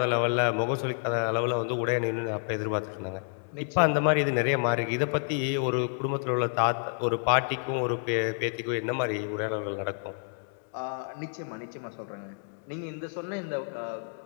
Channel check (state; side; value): silent; right; digital silence